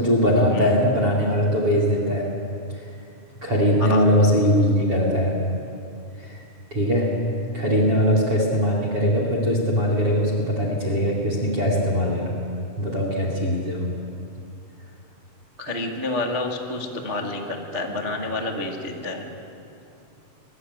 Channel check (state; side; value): late; left; 7.2 ms